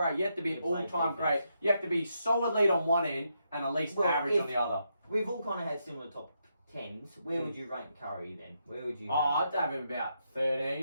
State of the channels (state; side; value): inverted; both; correlation -0.81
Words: you have to be an You play all-time defense. great. You have to be solid lead on one end and at least Well, average if- on the other. we've all kind of had similar top 10s. Where would you rank Curry then? Where would you? Oh, I'd have him about